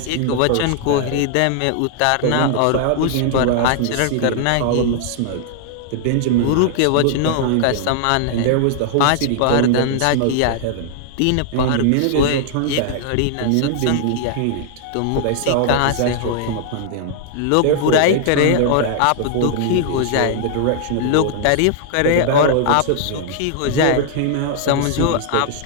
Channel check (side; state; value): both; different; correlation 0.00